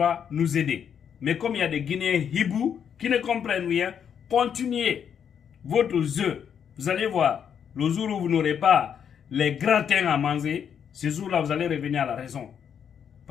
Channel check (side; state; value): right; quieter; 8.0 dB